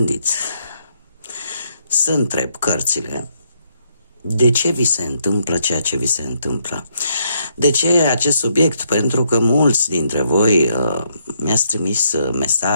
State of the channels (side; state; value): both; inverted; correlation -0.74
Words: să întreb cărțile de ce vi se întâmplă ceea ce vi se întâmplă. De ce acest subiect? Pentru că mulți dintre voi mi-ați trimis